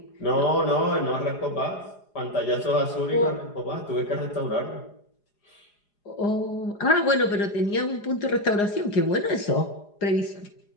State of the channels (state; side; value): late; right; 4.9 ms